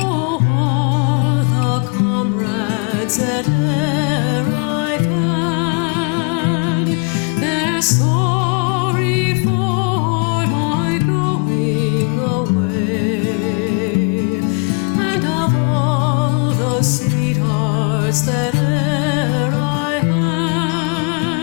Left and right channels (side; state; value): right; quieter; 36.4 dB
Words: all the comrades that e'er I've had, they're sorry for my going away. And of all the sweethearts that e'er I